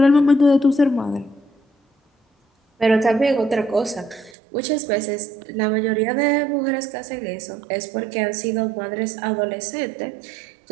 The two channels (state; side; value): drops out; left; at 4.4 s